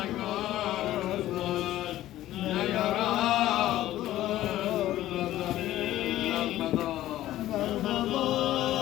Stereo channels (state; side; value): quieter; right; 14.3 dB